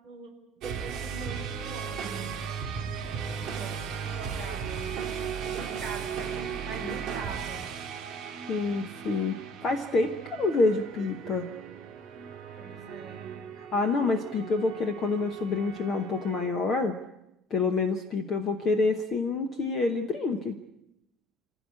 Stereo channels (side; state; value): both; normal; correlation 0.54